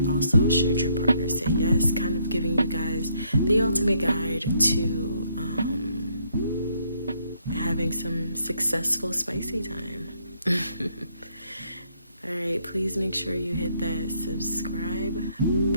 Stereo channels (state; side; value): inverted; both; correlation -0.71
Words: also should your partner say yes, kind of giving you guys the ultimate guide to having some successful spicy time. Alright, please make sure you hit that subscribe